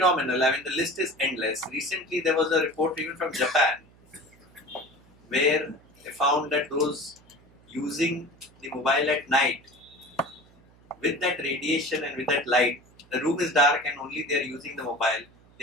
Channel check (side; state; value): right; noise; hum, 28 dB below the sound